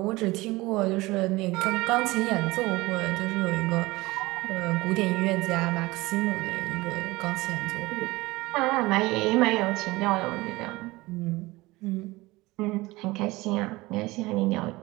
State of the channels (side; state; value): left; quieter; 20.7 dB